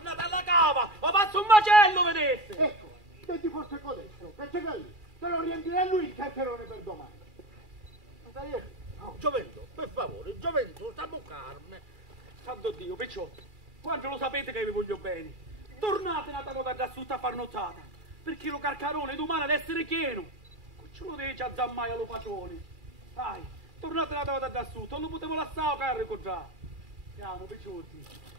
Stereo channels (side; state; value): left; late; 2.4 ms